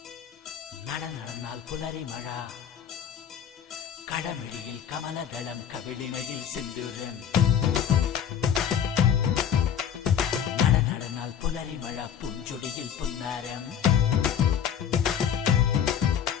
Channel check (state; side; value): quieter; right; 8.7 dB